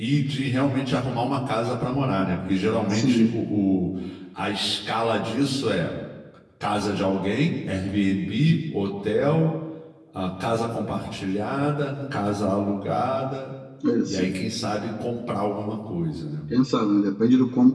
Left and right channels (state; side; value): identical; both; correlation 1.00